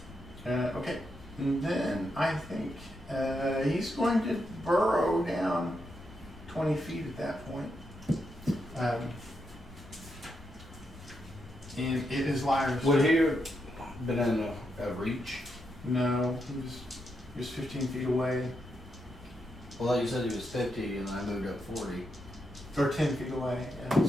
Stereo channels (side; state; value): both; normal; correlation 0.83